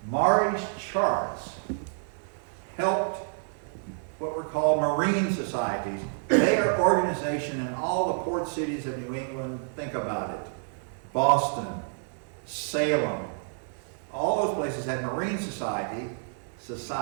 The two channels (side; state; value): left; silent; digital silence